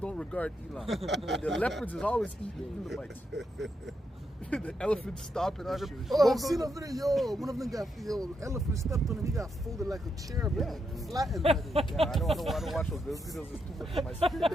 regard Elam. The leopards is always eating Elamites. The elephants stopping on them. Oh, I've seen a video. Yo, one of them got elephant stepped on him. He got folded like a chair, but flattened. Yeah, I don't watch those videos. It's too much for my spirit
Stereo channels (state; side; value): normal; both; correlation 0.82